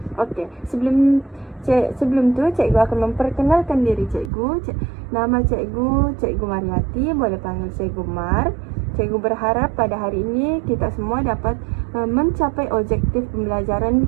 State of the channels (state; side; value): drops out; left; at 4.3 s